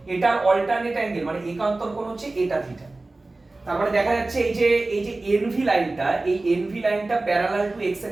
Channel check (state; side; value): quieter; left; 3.1 dB